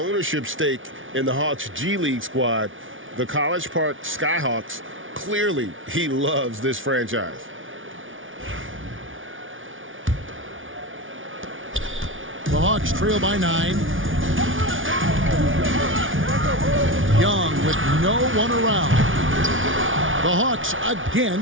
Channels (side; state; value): left; late; 0.57 ms